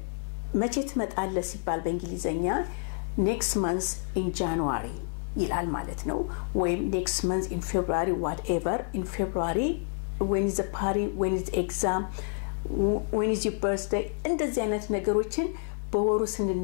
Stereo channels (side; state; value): right; silent; digital silence